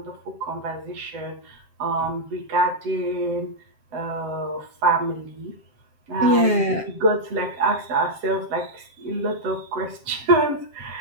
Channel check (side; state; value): left; late; 7.5 ms